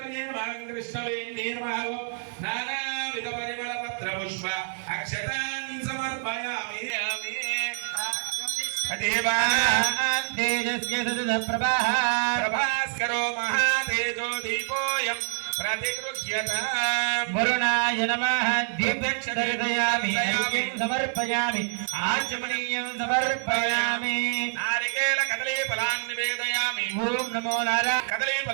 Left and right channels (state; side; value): silent; left; 60 dB below the other